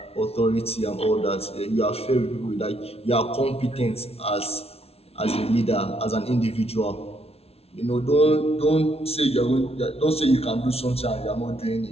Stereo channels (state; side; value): late; right; 0.30 ms